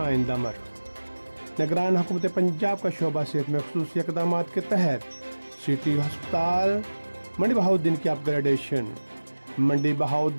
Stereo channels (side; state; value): both; inverted; correlation -1.00